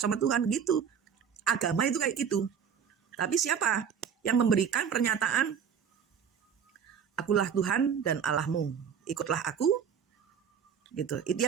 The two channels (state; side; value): quieter; left; 7.5 dB